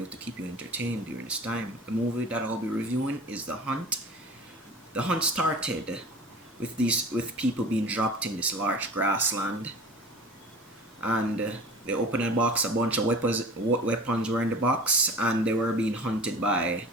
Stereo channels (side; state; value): both; normal; correlation 0.39